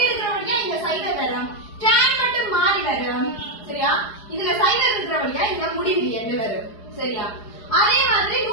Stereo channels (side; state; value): right; late; 4.8 ms